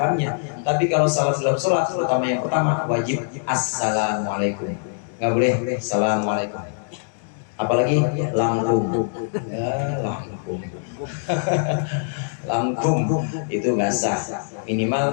lamnya. Tapi kalau salam dalam sholat, terutama yang pertama, wajib assalamualaikum, nggak boleh assalamualaikum. Apalagi langkum, ya langkum. Langkum itu nggak sah,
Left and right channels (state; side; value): silent; right; digital silence